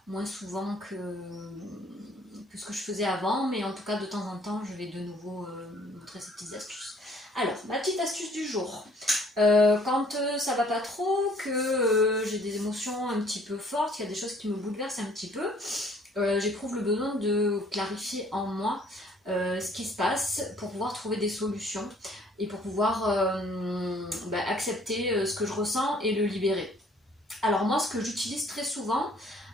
moins souvent que ce que je faisais avant, mais en tout cas de temps en temps je vais de nouveau montrer ces petites astuces. Alors, ma petite astuce du jour. Quand ça va pas trop, que j'ai des émotions un petit peu fortes, qu'il y a des choses qui me bouleversent un petit peu, j'éprouve le besoin de clarifier en moi ce qui se passe pour pouvoir trouver des solutions et pour pouvoir accepter ce que je ressens et le libérer. Alors moi, ce que j'utilise très souvent,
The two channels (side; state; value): both; normal; correlation 0.59